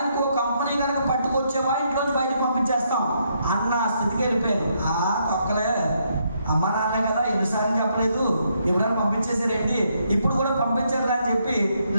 ఇంకో కంపెనీ కనుక పట్టుకొచ్చేవా ఇంట్లోంచి బయటకు పంపించేస్తాం అన్న స్థితికి వెళ్ళిపోయాను. తొక్కలే, అమ్మ నాన్న కదా ఎన్నిసార్లు చెప్పలేదు, ఎప్పుడైనా పంపించేసారేంటి, ఇప్పుడు కూడా పంపించారు అని చెప్పి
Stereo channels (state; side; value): inverted; both; correlation -0.75